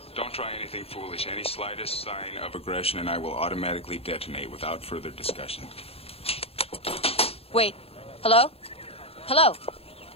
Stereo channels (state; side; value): late; right; 0.28 ms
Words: don't try anything foolish. Any slightest sign of aggression, and I will automatically detonate without further discussion. Wait. Hello? Hello?